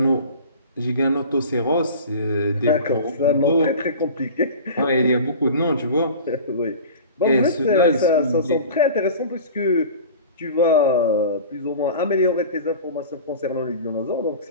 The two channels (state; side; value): inverted; both; correlation -0.38